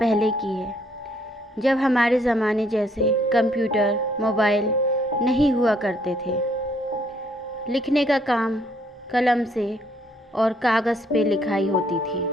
की है, जब हमारे ज़माने जैसे कंप्यूटर, मोबाइल नहीं हुआ करते थे। लिखने का काम कलम से और कागज़ पे लिखाई होती थी।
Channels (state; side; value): normal; both; correlation 0.67